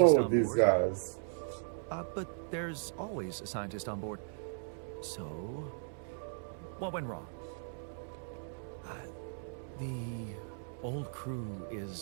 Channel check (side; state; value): left; silent; digital silence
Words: with on these board. guys. But there's always a scientist on board. So, what went wrong? The old crew